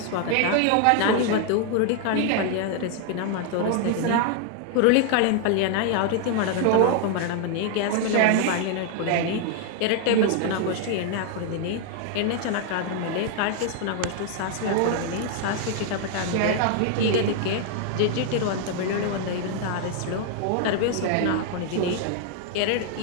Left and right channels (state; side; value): different; both; correlation 0.00